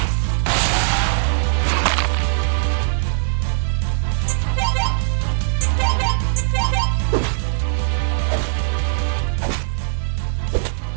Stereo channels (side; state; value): left; silent; 57 dB below the other